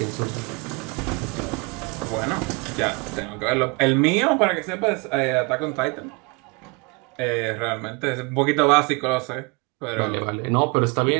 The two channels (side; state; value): left; quieter; 29.8 dB